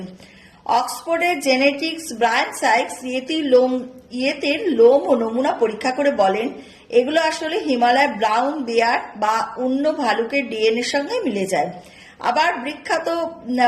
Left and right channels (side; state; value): both; identical; correlation 1.00